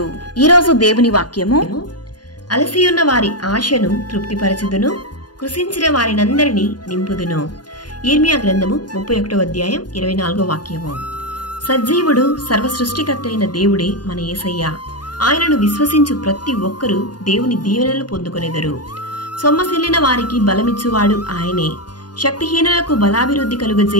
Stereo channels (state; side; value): late; right; 0.70 ms